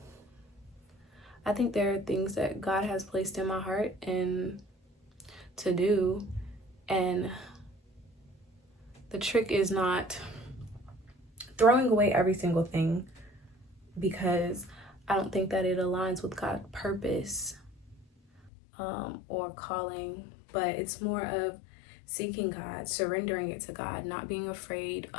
I think there are things that God has placed in my heart and to do. And the trick is not throwing away every single thing, because I don't think that it aligns with God's purpose or calling, but it's more of seeking God, surrendering it to God, not being afraid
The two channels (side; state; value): right; drops out; at 18.5 s